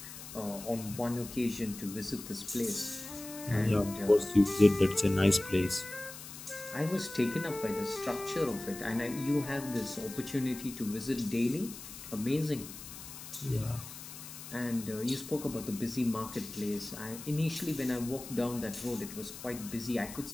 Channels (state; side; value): noise; left; hiss, 12 dB below the sound